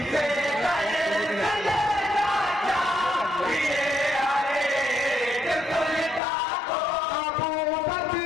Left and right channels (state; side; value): drops out; right; at 6.2 s